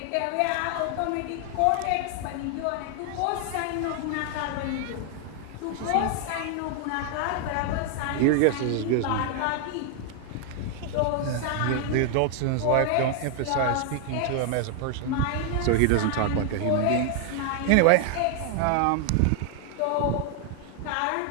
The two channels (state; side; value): different; both; correlation 0.00